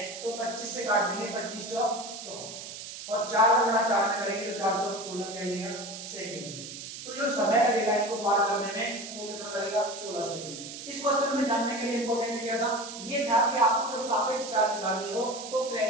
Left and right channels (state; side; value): noise; right; hiss, 10 dB below the sound